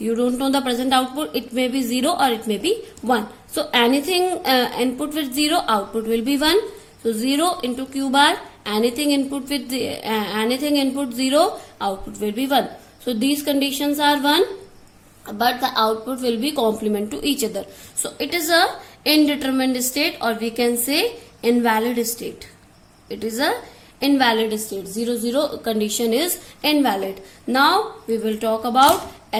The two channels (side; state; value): both; identical; correlation 1.00